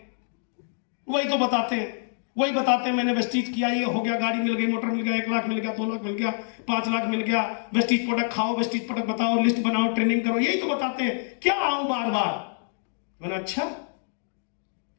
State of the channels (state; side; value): silent; right; digital silence